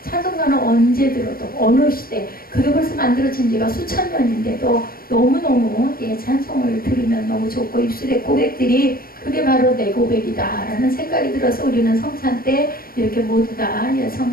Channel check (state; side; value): late; right; 0.43 ms